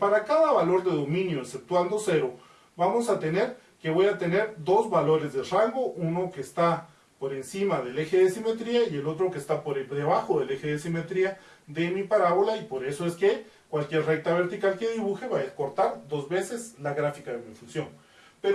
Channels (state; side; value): identical; both; correlation 1.00